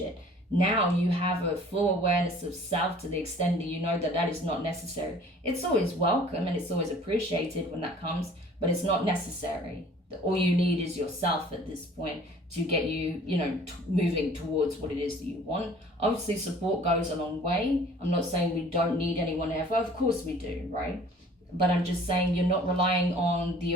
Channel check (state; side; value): normal; both; correlation 0.51